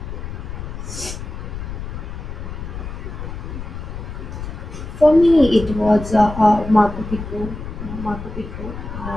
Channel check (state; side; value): noise; left; rumble, 8 dB below the sound